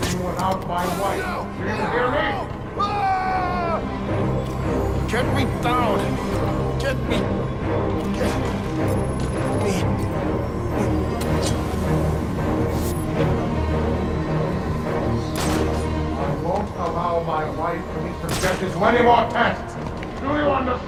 without my wife. Do you hear me? Get me down! Get me! Get me! I won't allow my wife to be subjected to any more tests. Do you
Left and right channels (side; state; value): both; identical; correlation 1.00